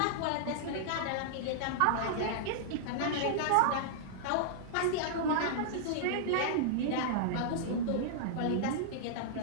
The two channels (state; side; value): different; both; correlation -0.02